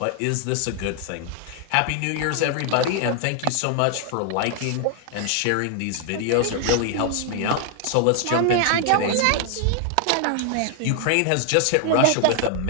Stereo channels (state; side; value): different; both; correlation 0.00